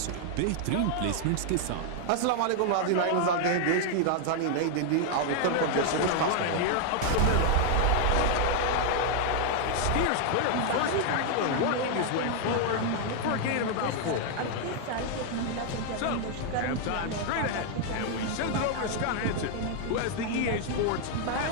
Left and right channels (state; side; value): different; both; correlation 0.00